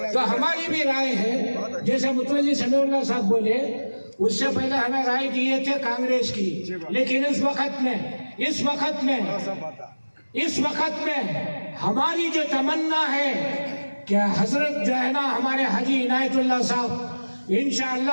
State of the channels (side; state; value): both; inverted; correlation -1.00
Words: तो हमारी भी राय है, जैसे मुतवल्ली समीउल्लाह साहब बोले, उससे पहले हमें राय दिए थे कांग्रेस की, लेकिन इस वक्त में हमारी जो तमन्ना है कि हजरत जो है ना हमारे हाजी इनायतुल्लाह साहब